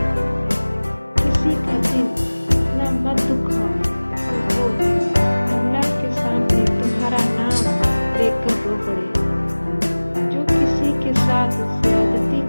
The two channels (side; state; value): both; inverted; correlation -1.00